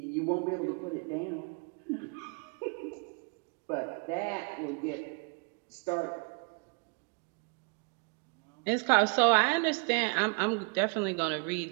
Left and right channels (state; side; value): quieter; left; 36.5 dB